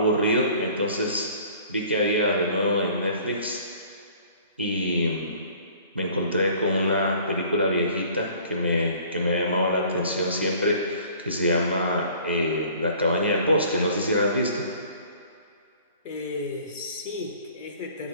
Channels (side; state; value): both; inverted; correlation -0.52